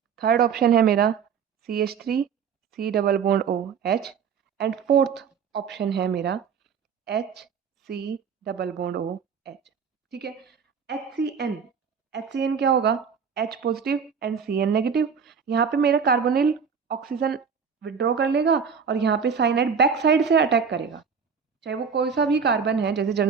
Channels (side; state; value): left; quieter; 6.5 dB